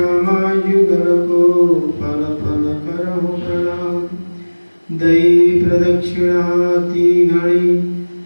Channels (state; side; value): inverted; both; correlation -1.00